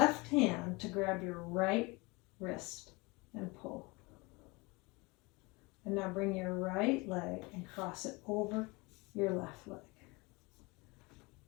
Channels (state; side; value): quieter; right; 25.8 dB